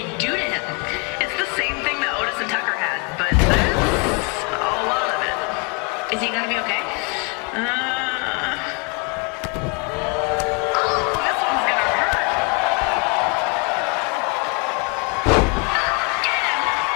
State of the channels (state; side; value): quieter; right; 32.9 dB